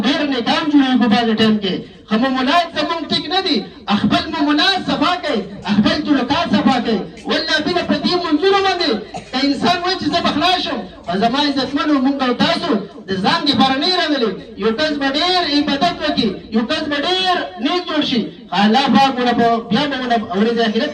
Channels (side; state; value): both; identical; correlation 1.00